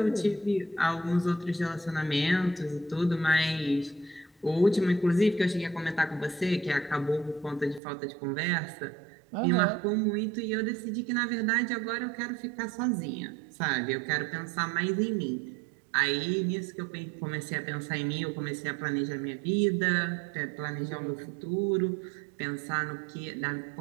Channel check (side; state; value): left; drops out; at 7.8 s